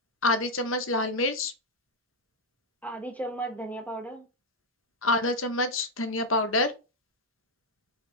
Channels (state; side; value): normal; both; correlation 0.01